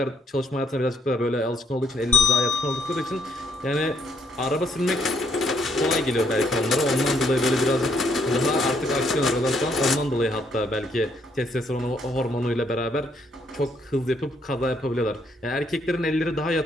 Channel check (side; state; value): both; normal; correlation 0.69